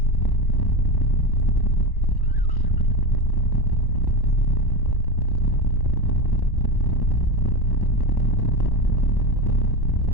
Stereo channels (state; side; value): late; right; 1.1 ms